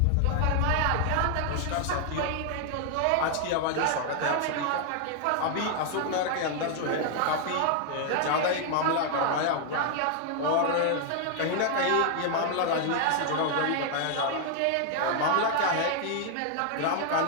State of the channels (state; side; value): different; both; correlation 0.00